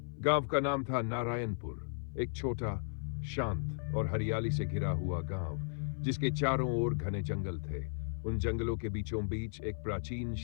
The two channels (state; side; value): silent; right; 54 dB below the other